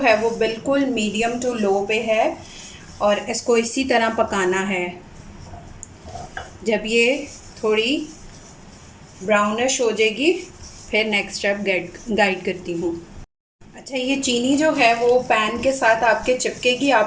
वो बिल्कुल मीडियम टू लो पे है और इसको इसी तरह पकाना है। जब ये थोड़ी ब्राउनिश हो जाएगी फिर नेक्स्ट स्टेप गाइड करती हूँ। अच्छा, ये चीनी जो है वो पैन के साथ आपके चिपकेगी।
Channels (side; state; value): both; identical; correlation 1.00